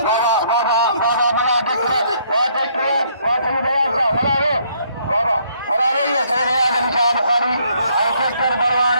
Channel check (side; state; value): both; inverted; correlation -0.67